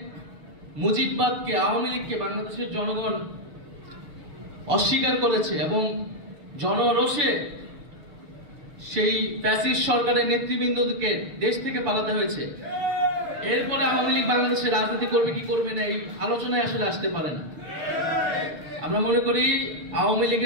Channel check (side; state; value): left; late; 6.6 ms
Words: মুজিববাদকে, আওয়ামী লীগকে বাংলাদেশের জনগণ অস্বীকার করেছে এবং জনরোষে সেই ফ্যাসিস্ট সরকারের নেতৃবৃন্দকে দেশ থেকে পালাতে হয়েছে। এরপরে আওয়ামী লীগ বাংলাদেশে রাজনীতি করবে কি করবে না এই আলোচনায় আসলে আসতে পারে না। আমরা মনে করি আওয়ামী